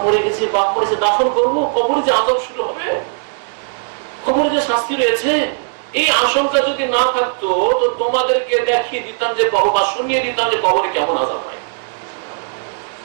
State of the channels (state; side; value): silent; left; digital silence